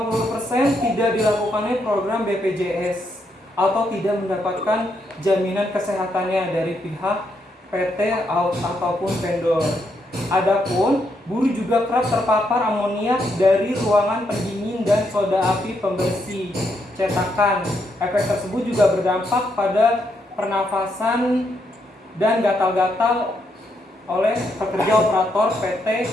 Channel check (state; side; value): normal; both; correlation 0.78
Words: tidak dilakukannya program BPJS atau tidak mendapatkan jaminan kesehatannya dari pihak PT ataupun vendor. Adapun buruh juga kerap terpapar amoniak dari ruangan pendingin dan soda api pembersih cetakan. Efek tersebut juga berdampak pada pernafasan dan gatal-gatal oleh pekerja operator PT